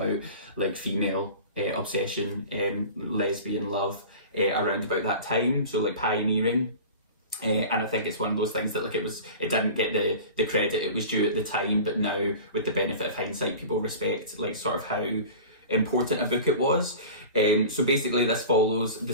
like female obsession, lesbian love around about that time. So like pioneering. And I think it's one of those things that like it didn't get the credit it was due at the time, but now with the benefit of hindsight, people respect like sort of how important a book it was. So basically this follows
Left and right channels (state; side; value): inverted; both; correlation -0.36